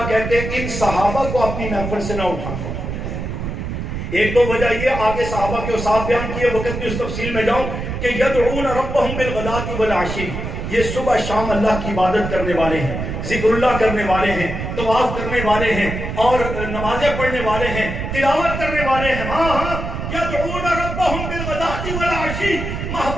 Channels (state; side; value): noise; right; rumble, 5 dB below the sound